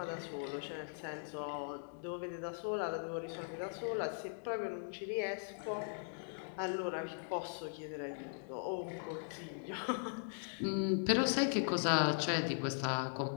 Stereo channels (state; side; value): silent; right; digital silence